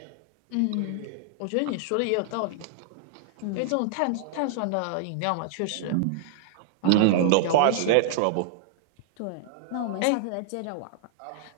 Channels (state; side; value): different; both; correlation -0.01